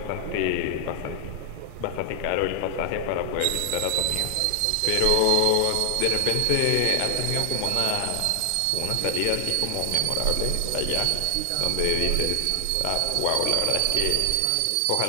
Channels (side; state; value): both; different; correlation 0.00